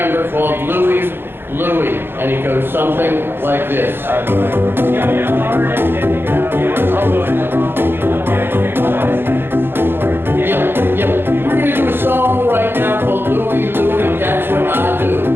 called Louie, Louie. And it goes something like this. Yep. We're going to do a song right now called Louie, Louie. That's what I do.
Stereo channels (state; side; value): late; left; 0.10 ms